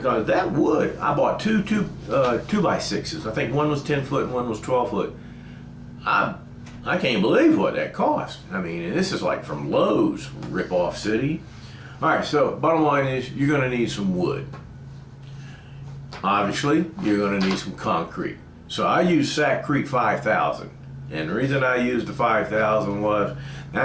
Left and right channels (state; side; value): identical; both; correlation 1.00